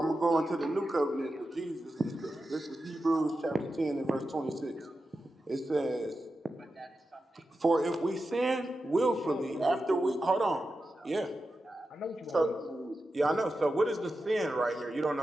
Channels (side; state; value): both; normal; correlation 0.91